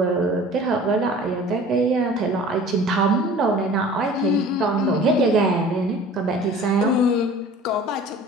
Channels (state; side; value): normal; both; correlation 0.45